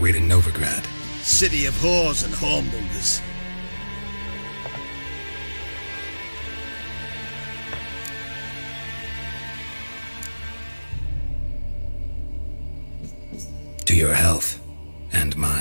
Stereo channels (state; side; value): inverted; both; correlation -1.00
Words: to Novigrad. City of whores and hornmongers. To your health. And